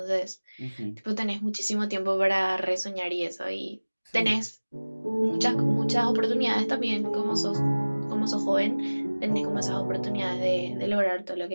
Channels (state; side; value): inverted; both; correlation -1.00